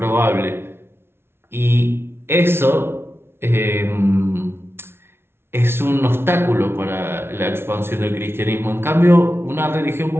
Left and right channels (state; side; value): late; left; 0.12 ms